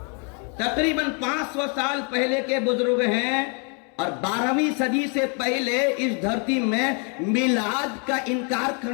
تقریباً 500 سال پہلے کے بزرگ ہیں، اور 12ویں صدی سے پہلے اس دھرتی میں میلاد کا انکار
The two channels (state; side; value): quieter; right; 37.4 dB